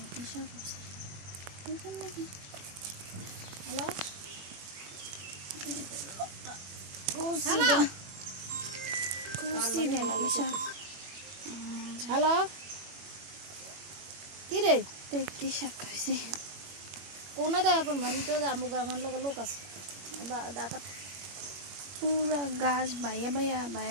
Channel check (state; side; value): late; left; 21 ms